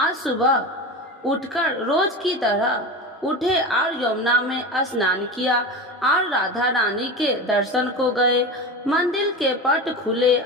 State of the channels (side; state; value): both; normal; correlation 0.25